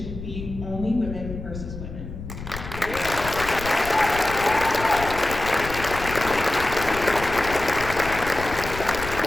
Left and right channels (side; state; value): left; noise; rumble, 10 dB below the sound